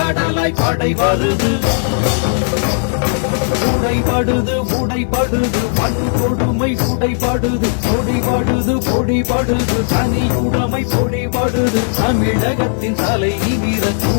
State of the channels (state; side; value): silent; right; digital silence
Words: படை வருது. உடைபடுது உடைபடுது வன்கொடுமை உடைபடுது பொடிபடுது பொடிபடுது தனியுடைமை பொடிபடுது. தமிழகத்தின் தலை நிமிர